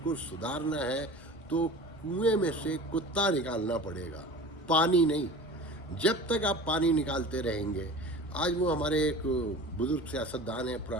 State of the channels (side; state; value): both; normal; correlation 0.37